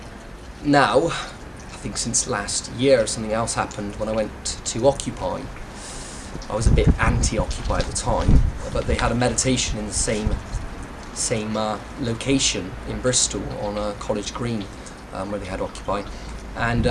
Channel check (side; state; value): both; identical; correlation 1.00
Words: now, I think since last year, something else happened when I went to Occupy. I was a bit anti-Occupy at the time, but they had a meditation in the same location in Bristol on College Green, where they had Occupy.